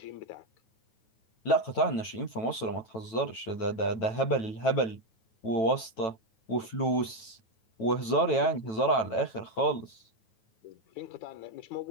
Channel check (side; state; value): right; late; 9.0 ms